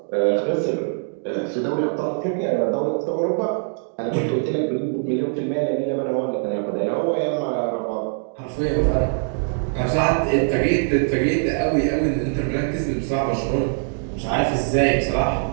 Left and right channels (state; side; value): silent; left; digital silence